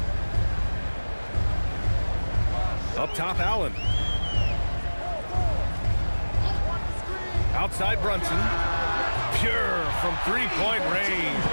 Up top, Allen. Outside Brunson. Pure from three-point range.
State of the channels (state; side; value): inverted; both; correlation -1.00